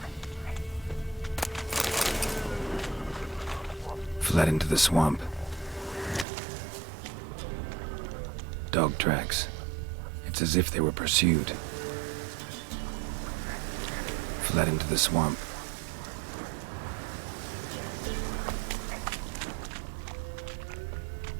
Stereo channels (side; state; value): left; drops out; at 6.2 s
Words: Fled into the swamp. Dog tracks. It's as if they were pursued. Fled into the swamp.